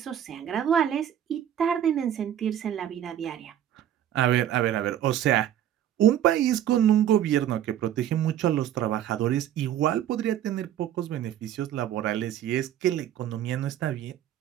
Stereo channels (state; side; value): quieter; left; 10.8 dB